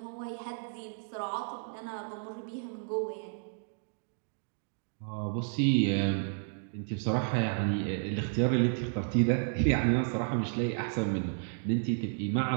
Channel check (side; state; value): left; silent; digital silence